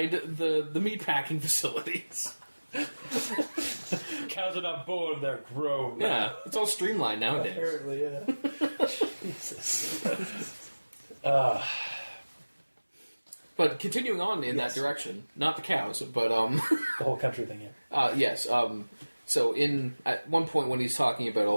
the meatpacking facilities. Cows are not born; they're grown. Yeah, it's all streamlined nowadays. Apparently, yeah. Jesus. But continuing on in that direction, not the cows, but The whole country thing, yeah. yes. So at one point when he's talking about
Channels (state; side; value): inverted; both; correlation -1.00